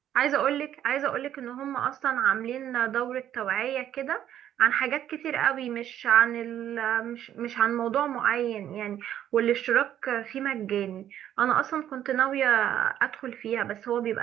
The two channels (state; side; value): quieter; left; 11.0 dB